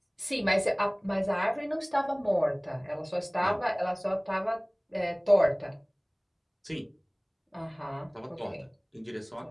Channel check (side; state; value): both; identical; correlation 1.00